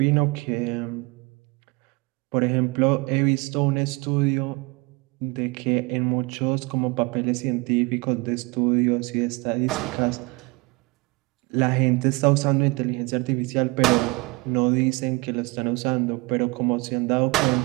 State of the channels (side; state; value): left; quieter; 25.6 dB